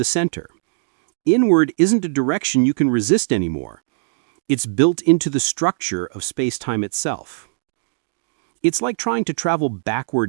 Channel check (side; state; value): left; silent; digital silence